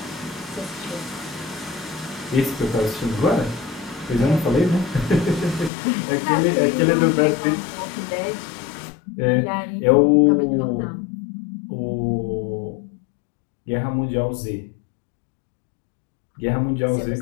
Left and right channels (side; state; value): right; drops out; at 5.7 s